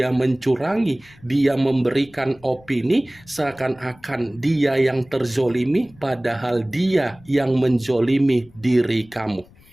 mencurangi, dia memberikan opini seakan-akan dia yang terzolimi padahal dia yang menzolimi diri kamu.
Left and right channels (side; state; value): left; noise; rumble, 26 dB below the sound